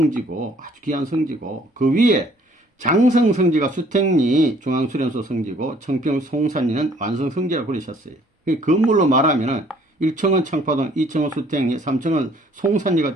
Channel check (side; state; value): both; normal; correlation 0.59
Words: 아주 귀한 성지고 그 위에 장성성지가 수택리 중앙수련소 성지고 청평 송산리는 완성성지라고 그러셨어요. 건물로 말하면은 1층은 청파동, 2층은 수택리, 3층은 송산리가